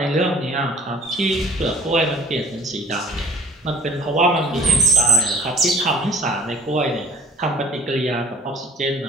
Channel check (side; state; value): both; normal; correlation 0.50